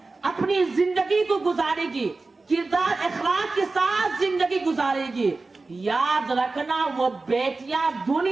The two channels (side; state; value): left; quieter; 3.6 dB